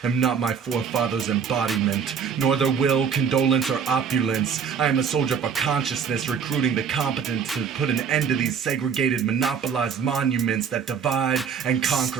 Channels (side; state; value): left; quieter; 6.7 dB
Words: am not my forefathers' embodiment, nor their will, condolence, or opulence. I am a soldier for consciousness, recruiting the competent to put an end to these segregated, monopolized monuments that divide and